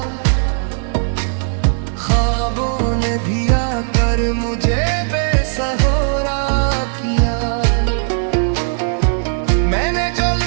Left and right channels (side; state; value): left; silent; digital silence